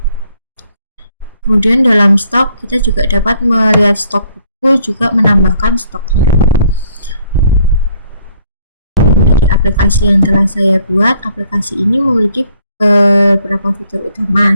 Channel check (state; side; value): inverted; both; correlation -0.65